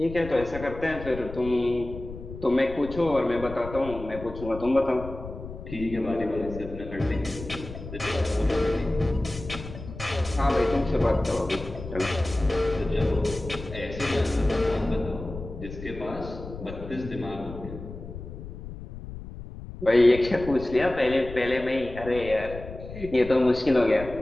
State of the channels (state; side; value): noise; left; rumble, 12 dB below the sound